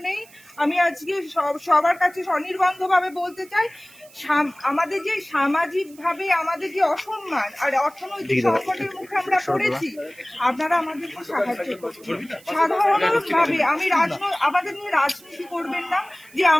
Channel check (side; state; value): right; noise; hiss, 25 dB below the sound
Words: নেই। আমি আজকে সবার কাছে স্বনির্বন্ধভাবে বলতে চাই, আমাদের যে সামাজিকভাবে আমাদের যে অসম্মান আর অর্থনৈতিক সংকটের মুখে আমরা পড়েছি, আপনারা আমাদেরকে সাহায্য করবেন। সাধারণভাবে আমাদের নিয়ে রাজনীতি করবেন না যে